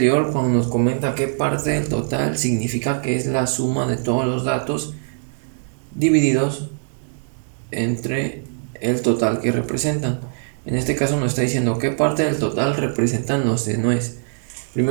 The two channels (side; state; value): left; silent; digital silence